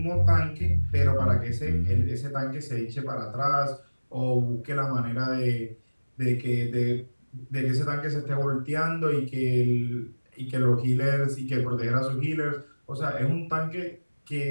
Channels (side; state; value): both; inverted; correlation -1.00